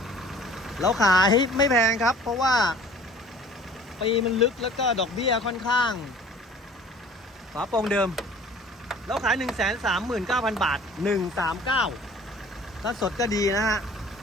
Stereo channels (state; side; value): normal; both; correlation 0.49